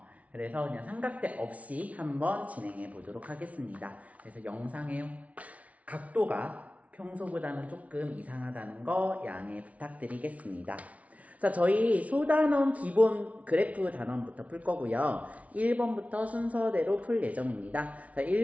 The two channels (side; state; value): left; late; 0.067 ms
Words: 그래서 그냥 삼각대 없이 한번 진행해 보도록 하겠습니다. 그래서 영상의 각도가 평소보다는 조금 이상하다는 거 양해 부탁드리겠습니다. 자, 저희 소단원 기본 그래프 단원부터 풀 거고요. 1번부터 순서대로 풀 예정입니다. 자,